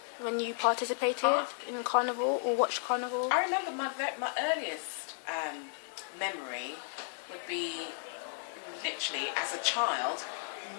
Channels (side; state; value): right; silent; digital silence